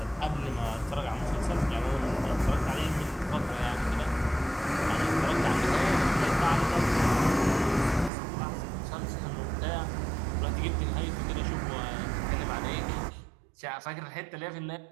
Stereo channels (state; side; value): drops out; left; at 8.1 s